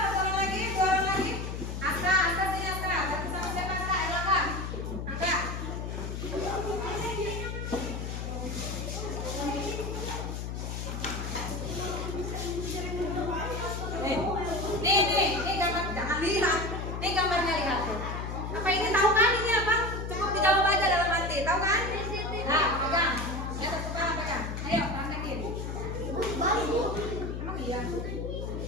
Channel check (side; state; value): left; noise; hum, 5 dB below the sound